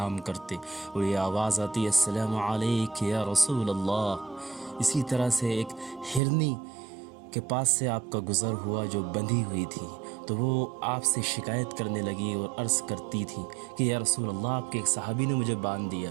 کرتے اور یہ آواز آتی السلام علیک یا رسول اللہ۔ اسی طرح سے ایک ہرنی کے پاس سے آپ کا گزر ہوا جو بندھی ہوئی تھی، تو وہ آپ سے شکایت کرنے لگی اور عرض کرتی تھی کہ یا رسول اللہ، آپ کے ایک صحابی نے مجھے باندھ دیا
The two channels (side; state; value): left; drops out; at 6.2 s